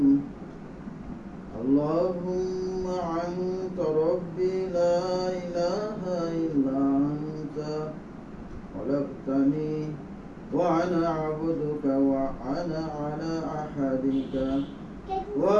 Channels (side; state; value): both; identical; correlation 1.00